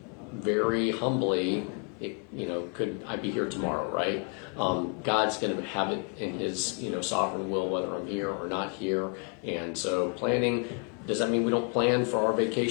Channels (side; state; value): right; quieter; 37.5 dB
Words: very humbly, could I be here tomorrow, right? God's going to have it in His, sovereign will, whether I'm here or not here. And so planning, does that mean we don't plan for our